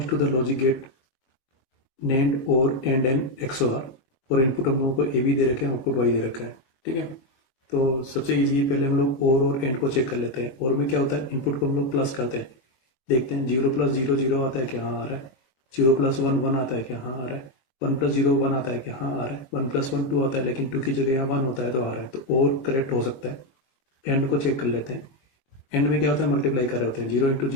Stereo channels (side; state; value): right; late; 23 ms